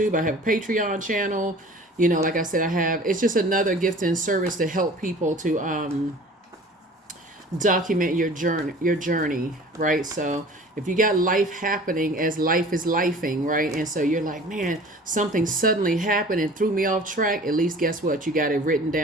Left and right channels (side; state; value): both; normal; correlation 0.45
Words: I have a Patreon channel. You know, like I said, it's just another gift and service to help people to document your journey, right? So if you got life happening as life is lifing, right? And so you're like, man, something suddenly happened and threw me off track. At least guess what? You got it written